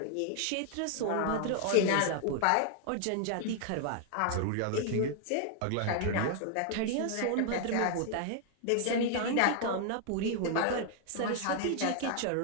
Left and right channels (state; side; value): different; both; correlation 0.00